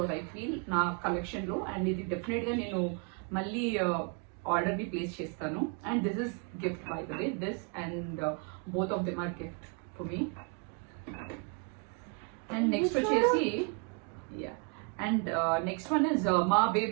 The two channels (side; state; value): left; quieter; 35.6 dB